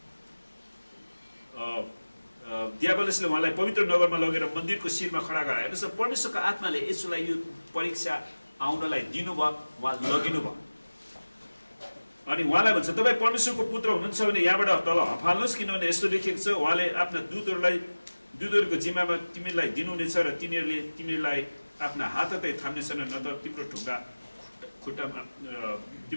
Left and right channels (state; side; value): inverted; both; correlation -1.00